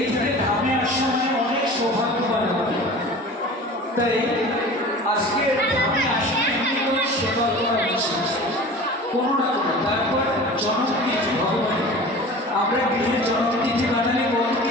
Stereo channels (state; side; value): normal; both; correlation 0.39